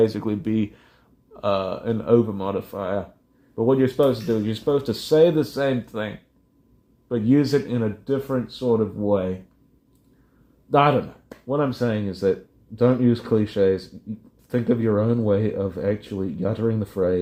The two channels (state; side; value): identical; both; correlation 1.00